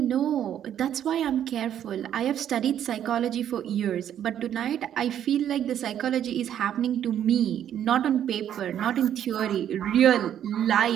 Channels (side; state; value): left; quieter; 10.2 dB